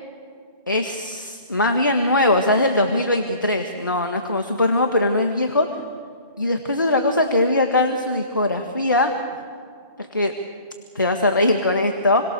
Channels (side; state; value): both; inverted; correlation -0.48